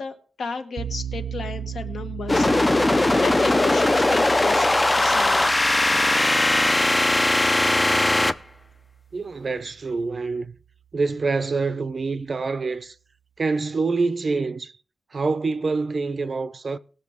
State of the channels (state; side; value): normal; both; correlation 0.95